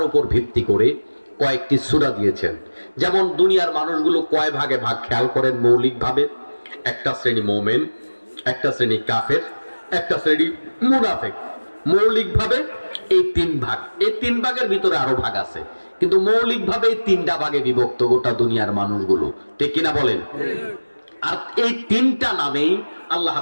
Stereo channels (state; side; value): inverted; both; correlation -1.00